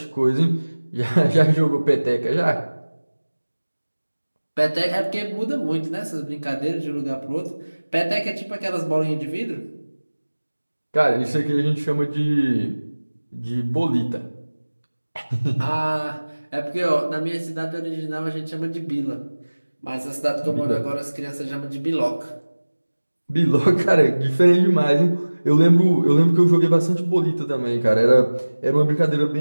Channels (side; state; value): both; inverted; correlation -1.00